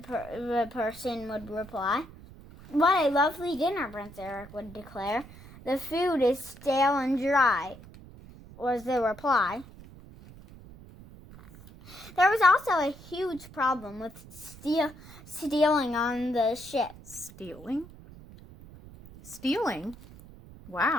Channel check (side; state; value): right; noise; rumble, 19 dB below the sound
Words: person would reply. "What a lovely dinner," Prince Eric would declare. "The food is stale and dry," was the reply. There was also a huge problem with stealing on the ship. Stealing?